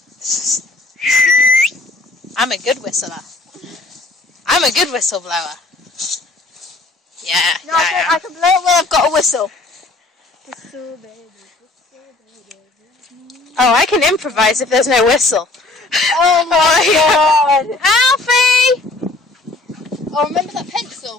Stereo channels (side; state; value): right; quieter; 3.2 dB